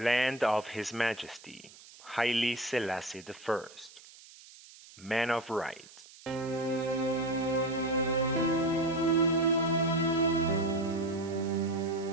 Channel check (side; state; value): right; noise; hiss, 21 dB below the sound